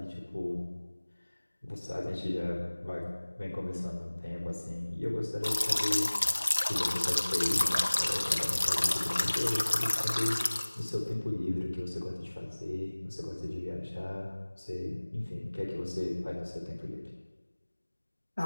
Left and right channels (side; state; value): both; inverted; correlation -1.00